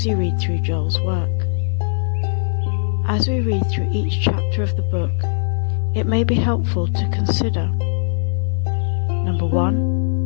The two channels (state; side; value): silent; right; 62 dB below the other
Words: you read through Joel's work. As we read through each chapter of the book, it may be helpful to consider: Number